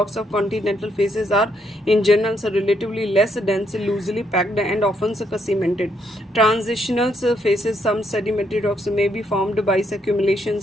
of continental faces are in general relatively less dense, loosely packed and often cemented. Transitional faces, some sedimentary rocks may be formed by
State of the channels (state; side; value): normal; both; correlation 0.74